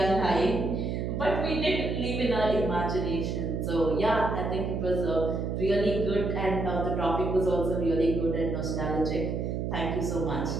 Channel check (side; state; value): right; noise; hum, 2 dB below the sound